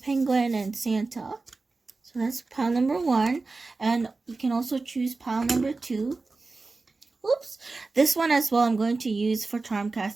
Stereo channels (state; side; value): quieter; left; 3.7 dB